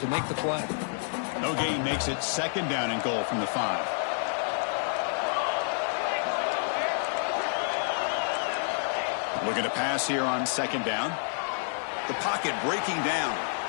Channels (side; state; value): right; silent; 57 dB below the other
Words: to make the play. No gain makes it 2nd down and goal from the 5. Looking to pass here on 2nd down. The pocket breaking down.